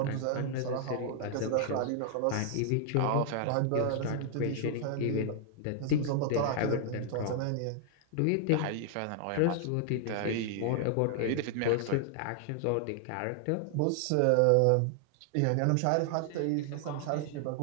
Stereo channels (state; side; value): different; both; correlation 0.00